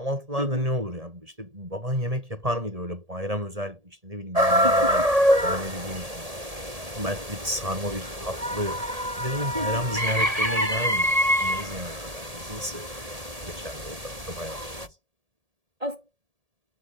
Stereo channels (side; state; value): left; late; 1.7 ms